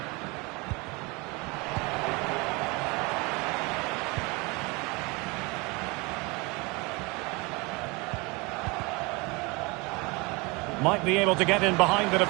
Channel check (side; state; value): left; quieter; 26.8 dB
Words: Might be able to get in behind the